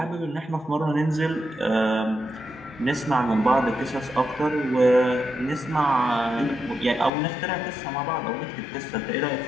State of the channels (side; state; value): right; drops out; at 7.1 s